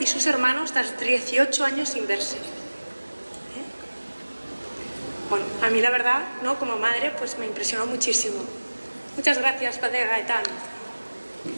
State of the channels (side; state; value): both; inverted; correlation -1.00